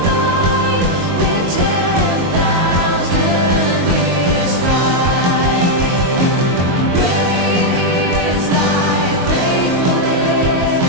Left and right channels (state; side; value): late; left; 22 ms